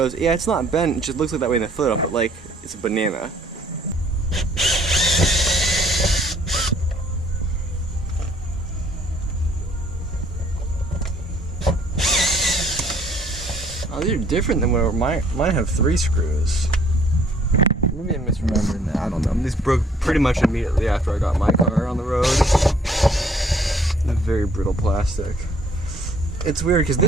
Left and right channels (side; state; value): both; normal; correlation 0.60